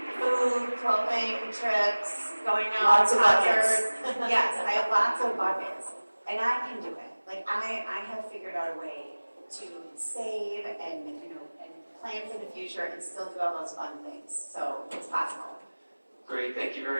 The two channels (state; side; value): inverted; both; correlation -1.00